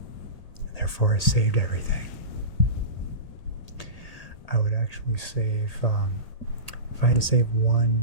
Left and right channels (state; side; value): late; right; 1.8 ms